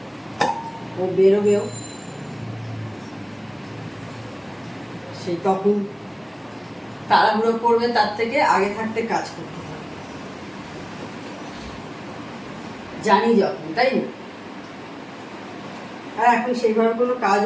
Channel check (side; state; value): both; identical; correlation 1.00